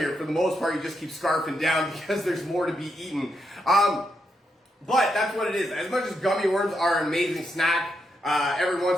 For the most part, you just keep scarfing down because there's more to be eaten. But that's what it is. As much as gummy worms are an amazing snack, every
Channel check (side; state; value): both; normal; correlation 0.82